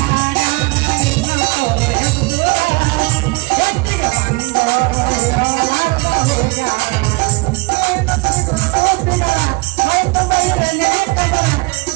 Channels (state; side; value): quieter; left; 25.6 dB